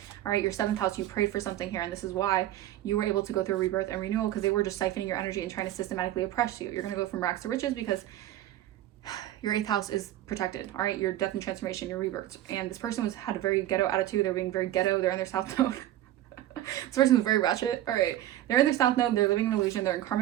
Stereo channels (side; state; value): left; quieter; 13.6 dB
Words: All right, your 7th house, you prayed for something here, and this is why you were able to go through a rebirth and renewal because they were just siphoning your energy and trying to systematically oppress you. You're going to go from rags to riches because your 8th house is protected. All right, your death and transformation, your rebirth. And this person had a very ghetto attitude. They're being very ghetto. They're in their South Node. This person was very ratchet. All right, they're in their South Node. They're living in illusion. They're in